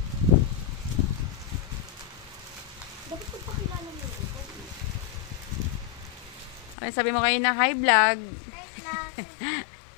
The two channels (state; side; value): drops out; right; at 6.8 s